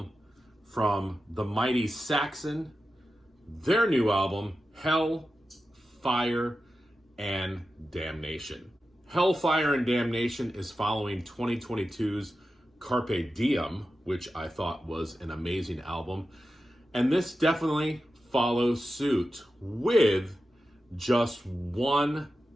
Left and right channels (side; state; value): both; normal; correlation 0.91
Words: from the mighty Saxon, their new album, Hell, Fire, and Damnation. Hellfire and Damnation is following 2022's Carpe Diem, which I thought was an amazing album. And this definitely follows suit with just one